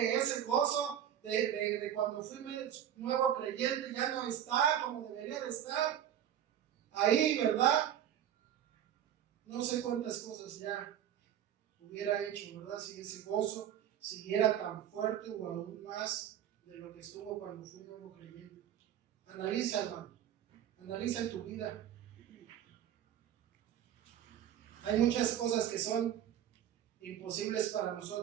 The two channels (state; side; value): quieter; left; 10.3 dB